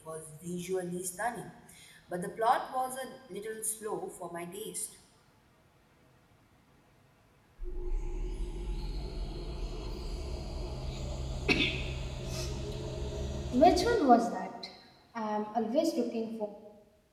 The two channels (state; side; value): identical; both; correlation 1.00